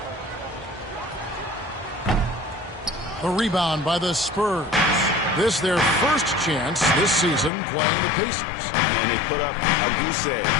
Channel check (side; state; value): right; drops out; at 7.5 s